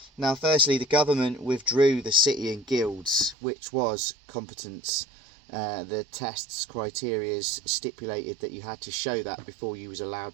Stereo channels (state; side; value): drops out; left; at 3.4 s